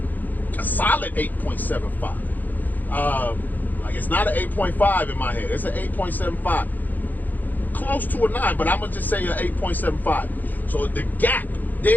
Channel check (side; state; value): right; late; 0.084 ms